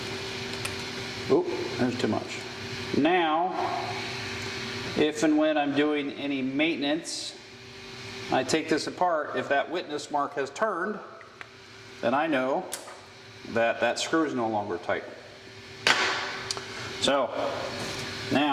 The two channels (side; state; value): both; identical; correlation 1.00